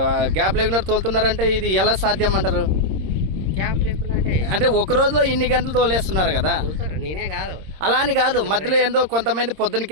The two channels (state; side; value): late; left; 26 ms